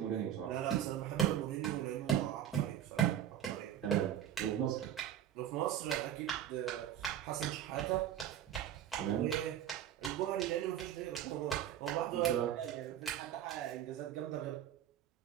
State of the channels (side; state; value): left; quieter; 10.7 dB